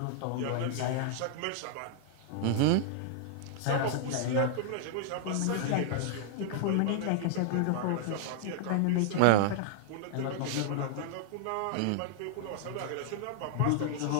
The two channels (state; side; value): different; both; correlation -0.01